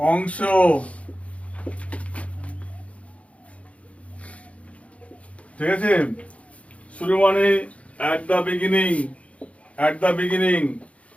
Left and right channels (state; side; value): late; right; 0.064 ms